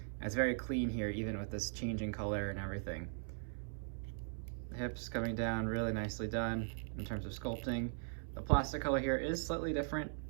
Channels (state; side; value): silent; left; 51 dB below the other